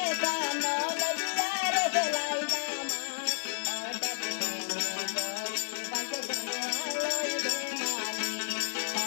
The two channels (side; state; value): right; silent; digital silence